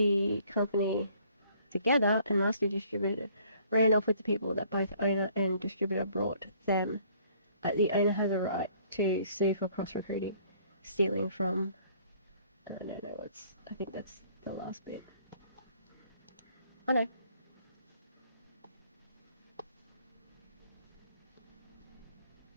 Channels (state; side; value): inverted; both; correlation -0.60